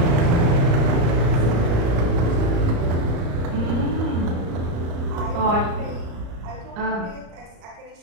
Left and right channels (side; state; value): left; late; 34 ms